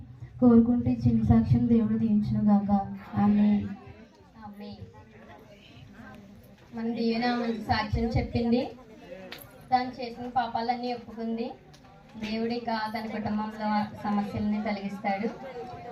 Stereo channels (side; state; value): both; identical; correlation 1.00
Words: కోరుకుంటూ ఈ చిన్న సాక్ష్యం దేవుడు దీవించును గాక. ఆమేన్. మన దీవెన మంచి సాక్ష్యం చెప్పింది. తను చేసిన పాపాలన్నీ ఒప్పుకుంది. దేవుడు ఇక తన కుటుంబంలో సమస్యలని తొలగిస్తాడు.